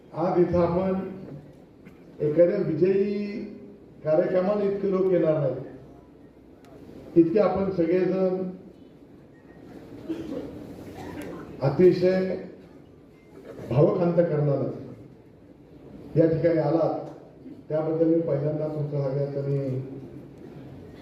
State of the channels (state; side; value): identical; both; correlation 1.00